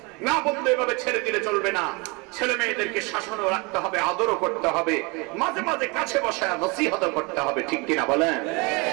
না বলতে এভাবে ছেড়ে দিলে চলবে না। ছেলে মেয়েদেরকে শাসনও রাখতে হবে, আদরও করতে হবে, মাঝে মাঝে কাছে বসায় নসিহত করতে হবে। ঠিক কিনা বলেন?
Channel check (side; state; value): left; quieter; 28.5 dB